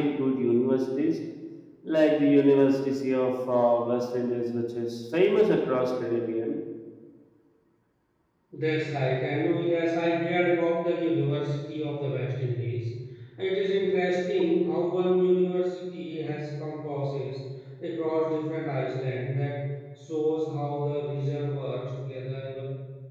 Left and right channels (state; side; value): identical; both; correlation 1.00